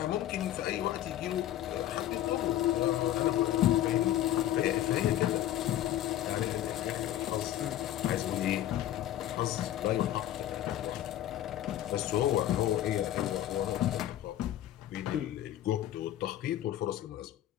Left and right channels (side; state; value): right; quieter; 12.5 dB